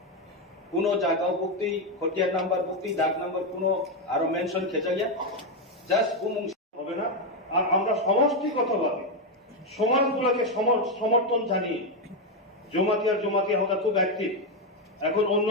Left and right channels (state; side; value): normal; both; correlation 0.06